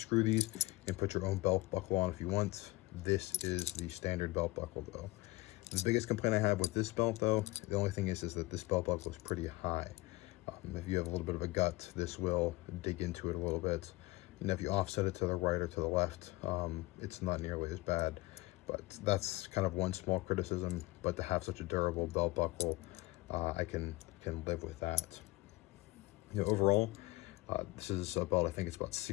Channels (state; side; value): quieter; right; 20.3 dB